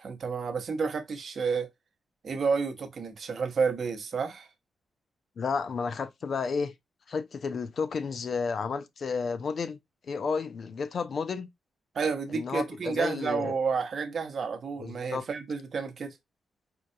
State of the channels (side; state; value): both; normal; correlation 0.82